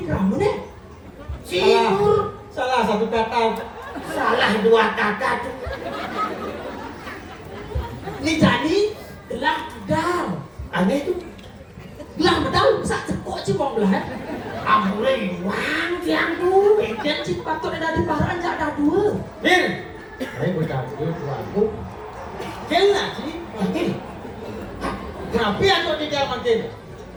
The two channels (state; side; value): identical; both; correlation 1.00